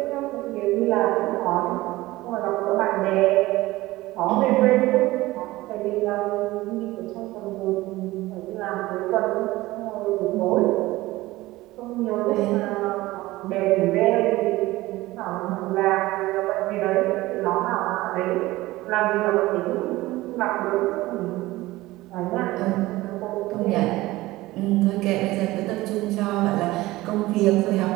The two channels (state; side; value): quieter; left; 18.4 dB